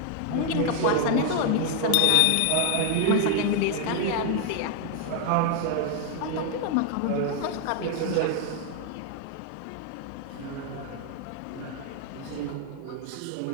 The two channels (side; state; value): both; different; correlation 0.00